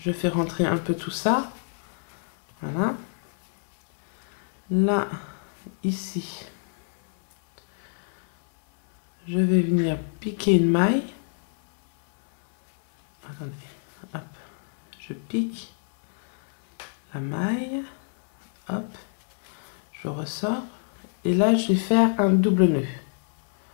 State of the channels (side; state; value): right; silent; 59 dB below the other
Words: fais rentrer un peu tout ça. Voilà. Là, ici, je vais venir piquer une maille. Attendez, hop, je pique la maille, hop, je ressors. Et là, je vais faire un double nœud.